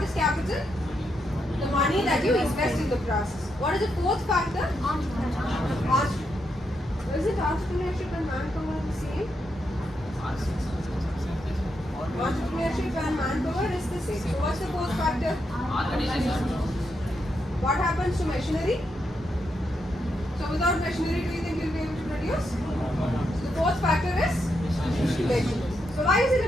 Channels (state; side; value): normal; both; correlation 0.82